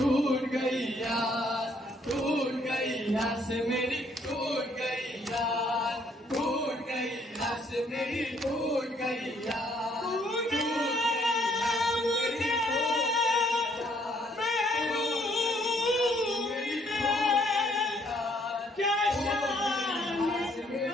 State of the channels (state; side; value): normal; both; correlation 0.66